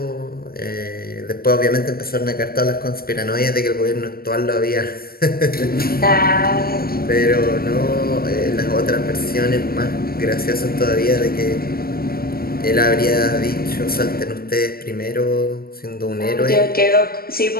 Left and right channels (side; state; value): right; late; 0.44 ms